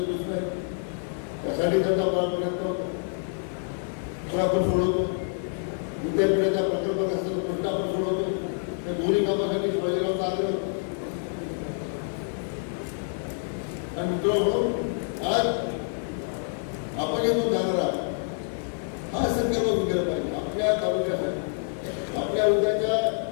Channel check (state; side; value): silent; right; digital silence